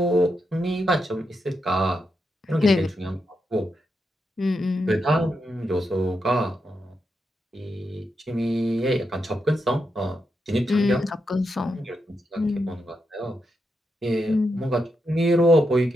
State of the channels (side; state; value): both; normal; correlation 0.84